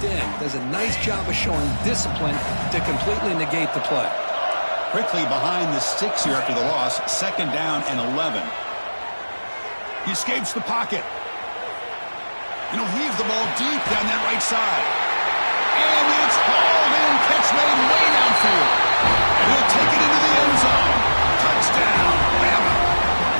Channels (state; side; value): inverted; both; correlation -1.00